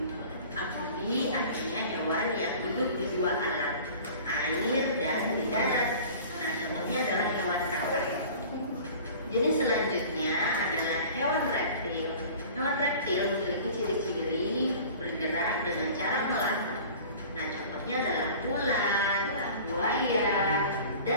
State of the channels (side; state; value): both; inverted; correlation -0.43